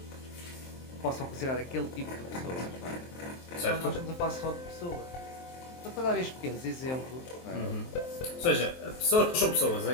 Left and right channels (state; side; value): late; right; 23 ms